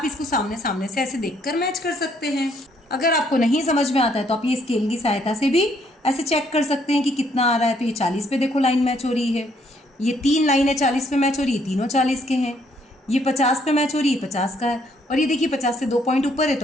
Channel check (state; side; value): normal; both; correlation 0.68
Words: इसको सामने सामने से ऐसे देखकर मैच कर सकते हैं। अगर आपको नहीं समझ में आता है तो आप ये स्केल की सहायता से भी ऐसे चेक कर सकते हैं कि कितना आ रहा है। तो ये 40 पे देखो लाइन मैच हो रही है, ये 3 लाइनें 40 पे मैच हो रही है, तीनों 40 के हैं। ये 50 पे मैच हो रही है, 50 का है। और ये देखिए 50 से 2 पॉइंट ऊपर है